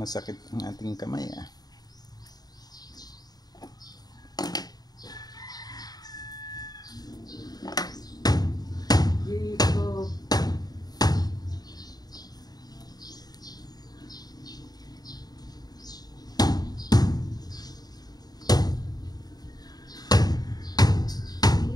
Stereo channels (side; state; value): right; late; 0.19 ms